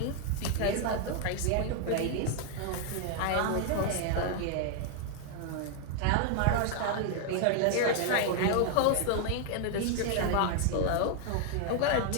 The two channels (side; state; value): both; different; correlation 0.00